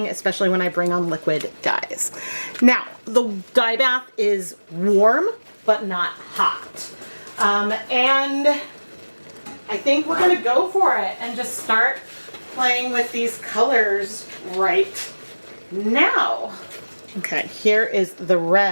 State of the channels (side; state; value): both; inverted; correlation -1.00